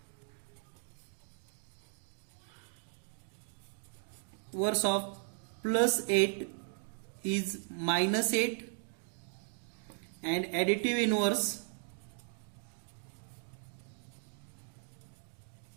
of plus 8 is minus 8 and additive inverse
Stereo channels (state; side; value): silent; left; 53 dB below the other